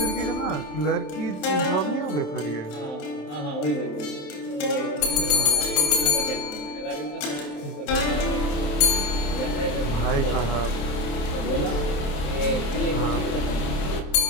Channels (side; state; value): right; late; 27 ms